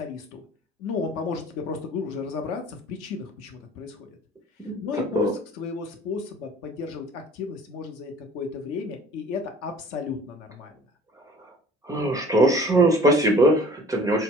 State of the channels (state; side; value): normal; both; correlation 0.48